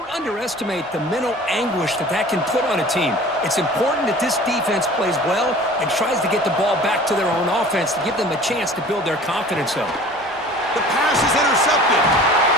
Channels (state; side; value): noise; right; rumble, 30 dB below the sound